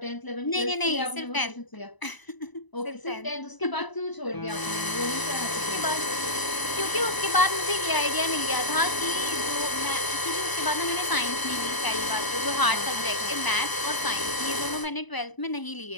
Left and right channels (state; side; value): late; right; 1.0 ms